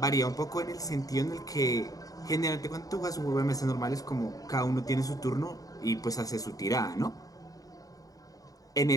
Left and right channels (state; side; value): late; right; 0.17 ms